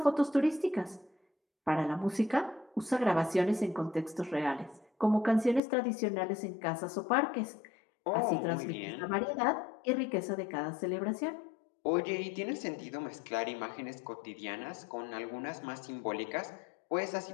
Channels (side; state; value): right; drops out; at 5.6 s